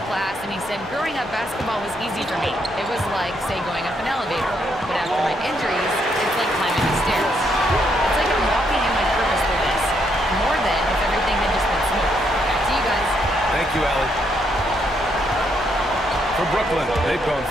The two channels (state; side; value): normal; both; correlation 0.75